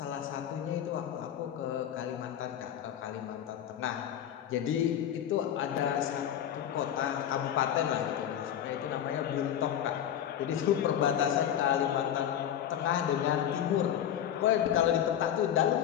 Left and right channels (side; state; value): right; quieter; 10.2 dB